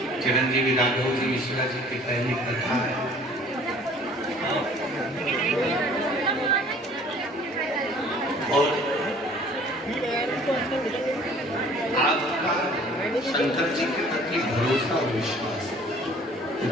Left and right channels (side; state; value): both; normal; correlation 0.52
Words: चिरंजीवी राघव जी मिश्रा जी की पहली कथा है। और आपका शंकर जी के प्रति भरोसा और विश्वास,